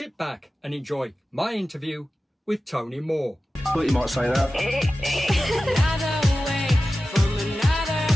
back and enjoy my interview with Tony Moore. Thought you might say that.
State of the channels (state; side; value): normal; both; correlation 0.95